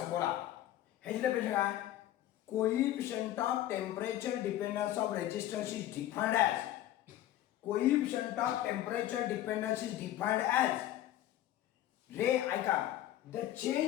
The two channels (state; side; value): quieter; right; 13.2 dB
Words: बोला. ह्याची डेफिनेशन काय, coefficient of temperature dependence of resistance is defined as, coefficient of temperature dependence is defined as रे ऐका, the